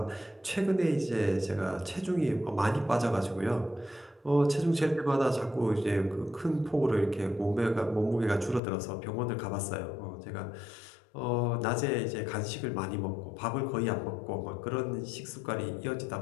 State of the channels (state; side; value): drops out; right; at 8.6 s